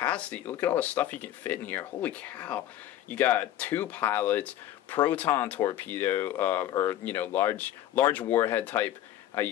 Look at all the stuff you can fit in here. Holy cow! You got 2 pilots, proton torpedo, or you know, large warhead type. You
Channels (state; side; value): quieter; right; 12.6 dB